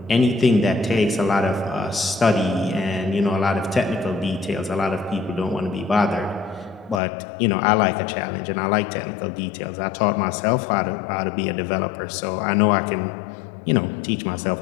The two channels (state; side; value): drops out; right; at 7.0 s